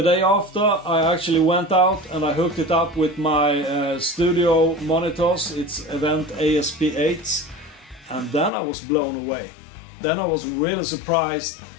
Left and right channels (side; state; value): right; drops out; at 8.5 s